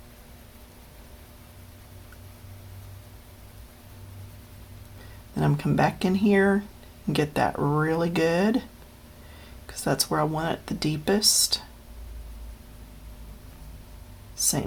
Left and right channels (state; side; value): identical; both; correlation 1.00